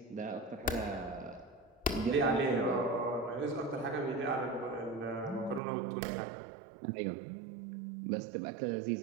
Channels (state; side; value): drops out; left; at 5.6 s